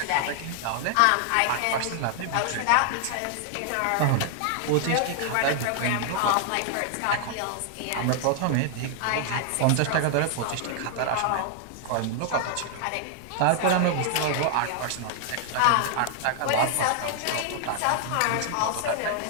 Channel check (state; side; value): different; both; correlation 0.00